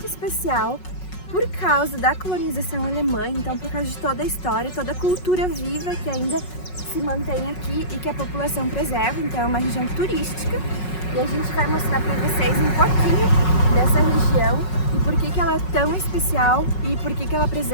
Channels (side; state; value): right; late; 5.4 ms